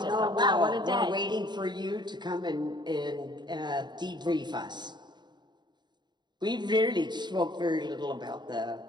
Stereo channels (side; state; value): left; late; 0.21 ms